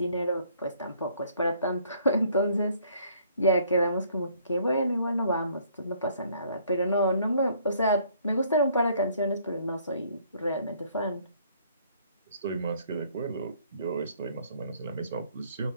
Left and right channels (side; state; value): both; inverted; correlation -0.62